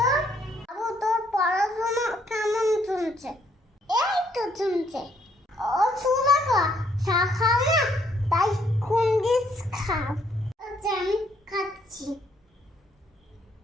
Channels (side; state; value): both; normal; correlation 0.68